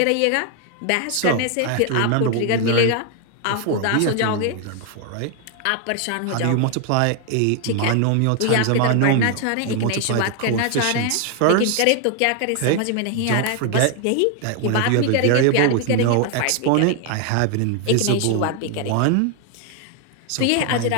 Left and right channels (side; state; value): both; different; correlation 0.00